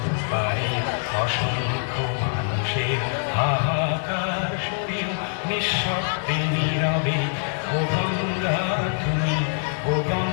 পারে অসংখ্য মানুষের হাহাকার শুনেও নিঃশব্দে নীরবে ও গঙ্গা তুমি ও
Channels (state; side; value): silent; right; 62 dB below the other